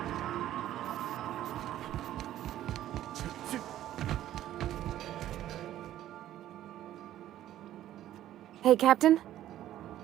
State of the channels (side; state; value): left; quieter; 12.8 dB